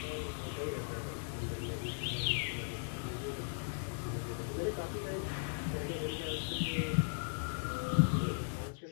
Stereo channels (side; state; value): right; silent; digital silence